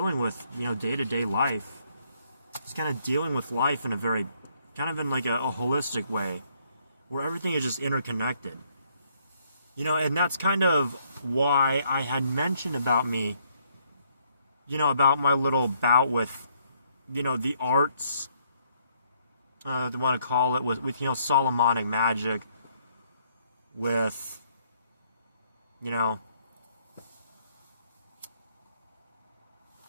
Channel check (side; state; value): both; inverted; correlation -0.69